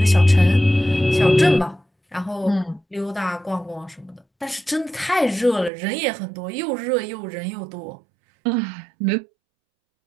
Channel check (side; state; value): left; drops out; at 5.7 s